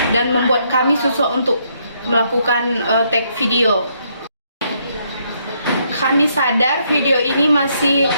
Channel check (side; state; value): both; inverted; correlation -0.73